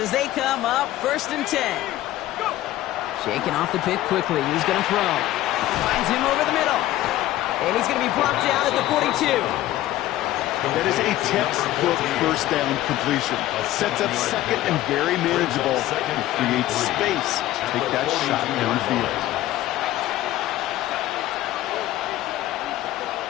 they come up 1st and 10. Shaking off the pick quickly. He's going to throw. Finds him over the middle. And he's going to be brought down at the 42. That is a textbook first down completion. Sets up second and very manageable. And creates space to take that shot downfield.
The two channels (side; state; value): right; quieter; 14.9 dB